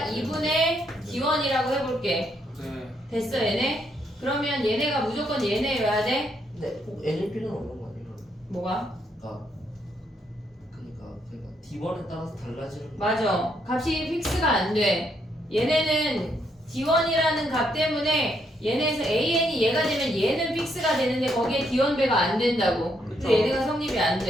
2분의 D1이라고 해볼게 네. 됐어 얘네? 그러면 얘네가 무조건 얘네여야 돼? 근데 꼭 N일 필요는 없는 거 아니에요? 뭐가? 그러니까 D1에 따라서 달라지는 거. 맞아. 값이 픽스가 안 돼. 얘네는 D1이라는 값 때문에 얘네에서 AN이 얘가 되면 얘는 픽스가 되는데 거기에 D1배가 안 된다고. 그쵸. 근데 얘네가 성립이 안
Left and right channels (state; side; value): normal; both; correlation 0.75